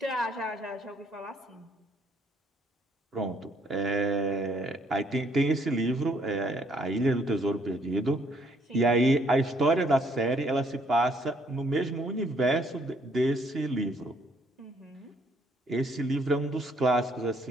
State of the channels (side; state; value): both; normal; correlation 0.66